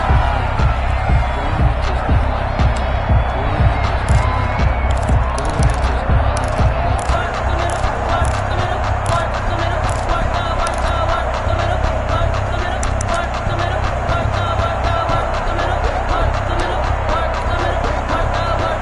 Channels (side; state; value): both; identical; correlation 1.00